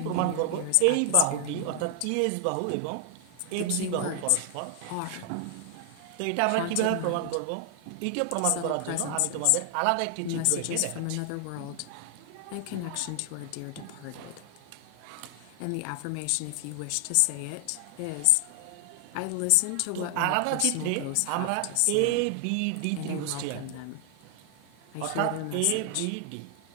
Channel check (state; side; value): different; both; correlation 0.00